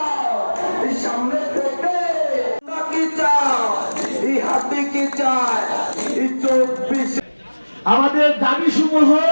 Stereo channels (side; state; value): both; inverted; correlation -1.00